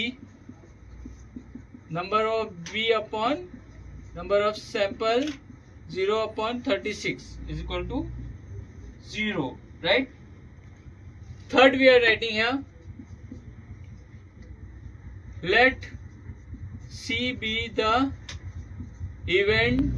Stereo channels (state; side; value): identical; both; correlation 1.00